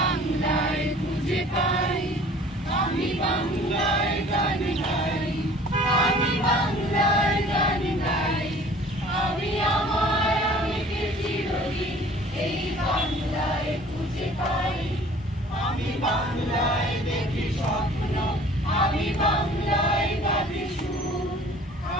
খুঁজে পাই। আমি বাংলায় গান গাই, আমি বাংলায় গান গাই, আমি আমার আমিকে চিরদিন এই বাংলায় খুঁজে পাই। আমি বাংলায় দেখি স্বপ্ন, আমি বাংলায় গাহি সুর,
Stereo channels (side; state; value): both; normal; correlation 0.50